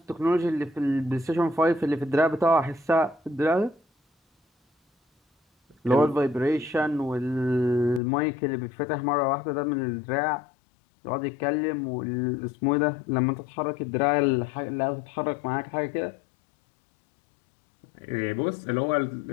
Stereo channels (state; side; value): drops out; right; at 8.0 s